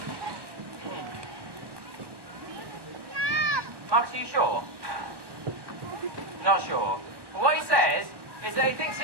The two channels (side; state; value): left; late; 1.2 ms